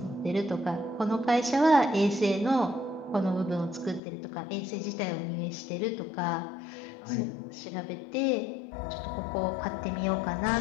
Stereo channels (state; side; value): drops out; right; at 4.0 s